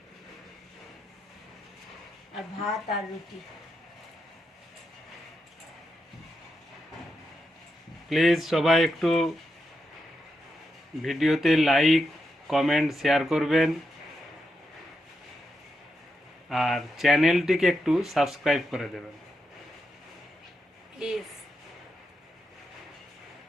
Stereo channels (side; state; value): both; normal; correlation 0.85